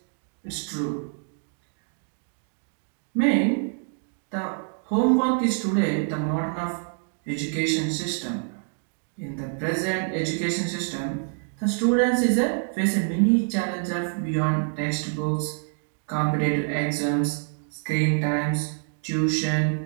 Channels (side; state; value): left; silent; 61 dB below the other